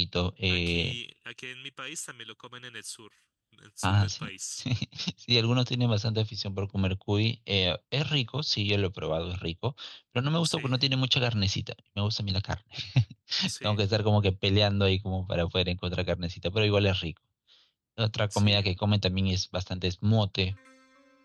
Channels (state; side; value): identical; both; correlation 1.00